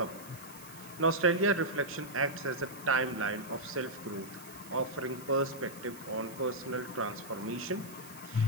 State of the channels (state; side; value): noise; right; hiss, 18 dB below the sound